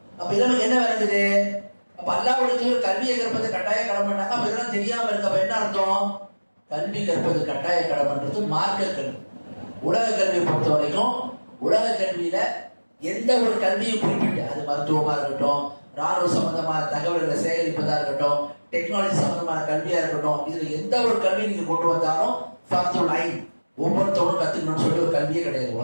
அப்ப இதெல்லாம் என்ன வருது, அப்ப அல்லாஹ்வுக்கு கல்வியை கற்பது கட்டாய கடமைன்னாங்க. அப்ப இதெல்லாம் தெரியாம இருக்க அப்ப என்ன அர்த்தம், கல்வி கற்பது கட்டாய கடமைன்றது மார்க்க கல்வி. உலக கல்வியை பொறுத்த வரைக்கும் உலக கல்வியில எந்த ஒரு கல்வியும் குறிப்பிட்டு, அது மருத்துவமா இருக்கட்டும், ராணுவ சம்பந்தமான தகவல்களை சேகரிப்பதா இருக்கட்டும், டெக்னாலஜி சம்பந்தமான கல்வியா இருக்கட்டும், இதுல எந்த ஒரு கல்வி நீங்க கொண்டு வந்தாலும் ஃபர்துல் ஐன், ஒவ்வொருத்தவரும் கத்துக்கணும்னு சொல்லி ஒரு கல்வியே கிடையாது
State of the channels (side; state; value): both; inverted; correlation -1.00